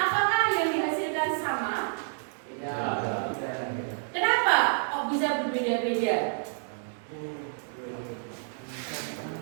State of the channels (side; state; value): left; silent; digital silence